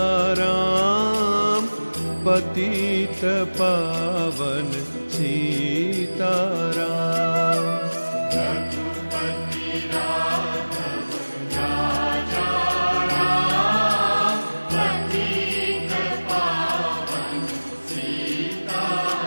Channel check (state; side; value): inverted; both; correlation -1.00